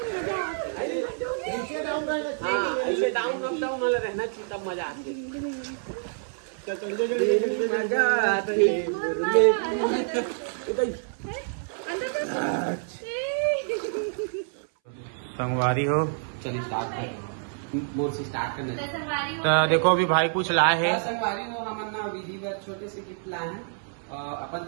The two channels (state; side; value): silent; left; 60 dB below the other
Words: में मजा ऐसे डाउन अप डाउन वाला रहना चाहिए तब मजा आती संगवारी हो। चलिए स्टार्ट कर मोर से स्टार्ट करने। तो देखो अभी भाई कुछ लाए हैं। संगवारी हो हमन ना विधि बर छोटे से गिफ्ट लाए हैं अपन